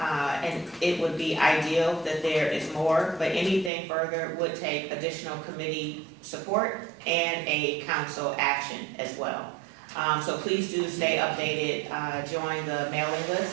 it would be ideal that there is more, but anything further would take additional committee support and a council action as well. So please do stay updated, join the mailing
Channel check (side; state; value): left; drops out; at 3.7 s